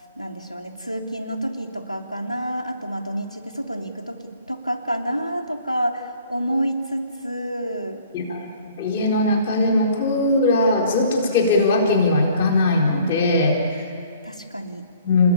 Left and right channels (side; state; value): both; inverted; correlation -0.56